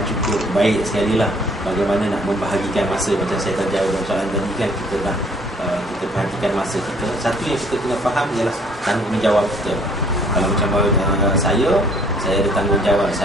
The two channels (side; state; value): both; normal; correlation 0.60